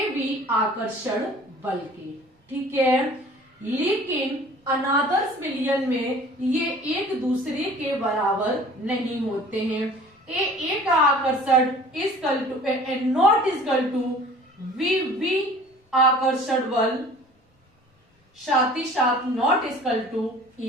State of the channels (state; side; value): normal; both; correlation 0.47